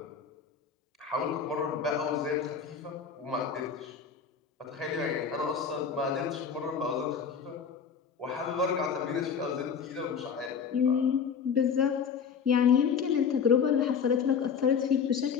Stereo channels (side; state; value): right; quieter; 6.6 dB